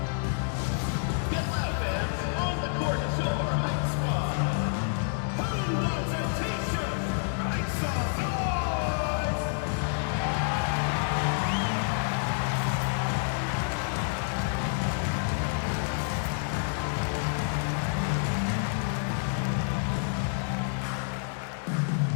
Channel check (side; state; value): right; silent; digital silence